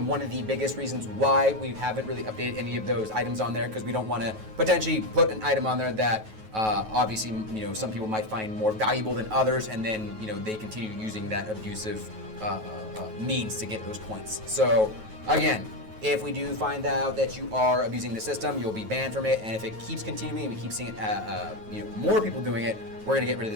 one of the biggest reasons why we haven't really updated any of those items on there, because we don't want to potentially put an item on there that obviously, some people might find more valuable than others, and then, they continue using that abusive means to get those points. So again, if we do find out that you are abusing the system, you'll be banned from it. And if it keeps continuing and we keep seeing it, more people doing it, we're going to get rid of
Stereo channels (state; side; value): late; left; 9.3 ms